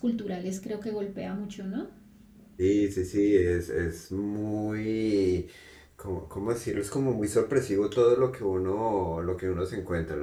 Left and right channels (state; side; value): identical; both; correlation 1.00